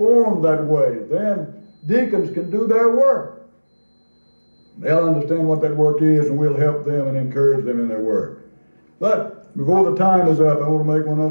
that way, then deacons can do their work. They'll understand what that work is, and we'll help them and encourage them in their work. But before the time is up, I want to make one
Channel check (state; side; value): inverted; both; correlation -1.00